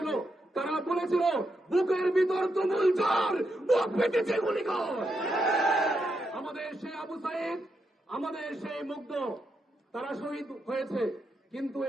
তারা বলেছিল, বুকের ভিতর তুমুল ঝড়, বুক পেটেছে গুলি কর। আমাদের সেই আবু সাইদ, আমাদের সেই মুগ্ধ, তারা শহীদ হয়েছে, কিন্তু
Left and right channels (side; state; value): both; normal; correlation 0.82